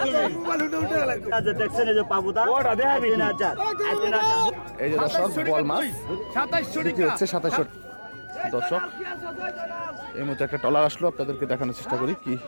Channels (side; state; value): both; inverted; correlation -1.00